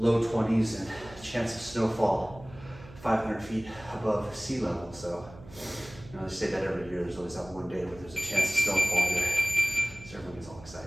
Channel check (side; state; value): right; noise; hum, 19 dB below the sound